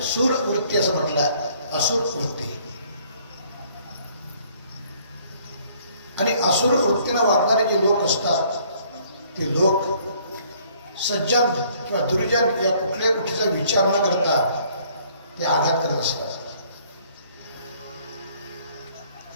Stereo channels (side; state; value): both; inverted; correlation -0.61